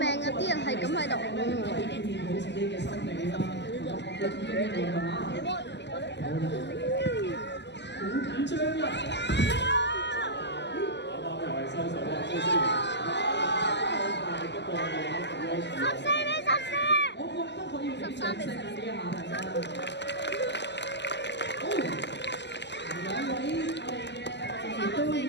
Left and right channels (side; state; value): right; late; 0.50 ms